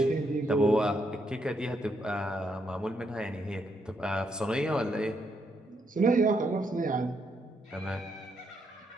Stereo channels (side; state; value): both; normal; correlation 0.77